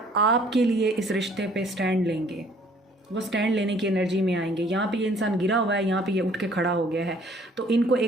आपके लिए इस रिश्ते पे स्टैंड लेंगे। वो स्टैंड लेने की एनर्जी में आएंगे। यहाँ पे ये इंसान गिरा हुआ है, यहाँ पे ये उठ के खड़ा हो गया है, तो इनको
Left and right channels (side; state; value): both; normal; correlation 0.58